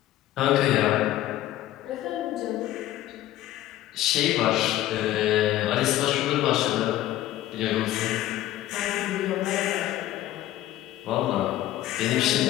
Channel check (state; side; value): quieter; right; 14.1 dB